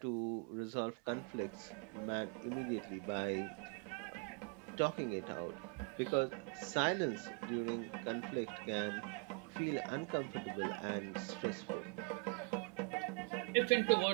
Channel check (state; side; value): quieter; left; 36.0 dB